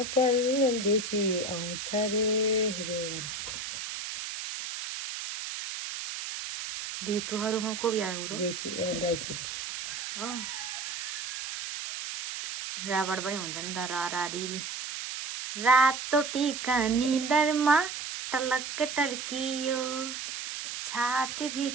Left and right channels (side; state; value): right; noise; hiss, 6 dB below the sound